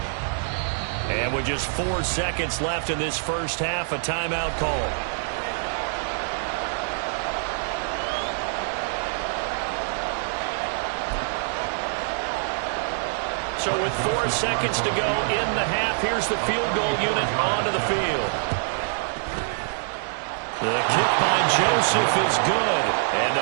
And with just 4 seconds left in this first half, a timeout call. So with 4 seconds to go in the half, here's the field goal unit onto the field. The kick by Joseph is good. And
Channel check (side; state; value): left; silent; digital silence